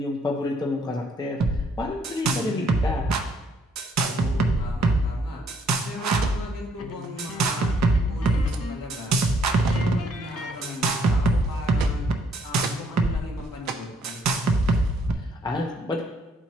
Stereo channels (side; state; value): both; normal; correlation 0.68